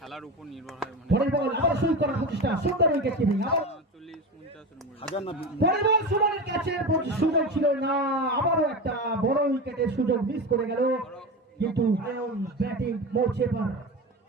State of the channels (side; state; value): both; normal; correlation 0.24